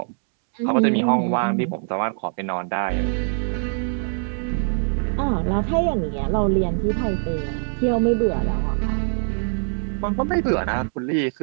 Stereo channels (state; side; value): silent; left; 64 dB below the other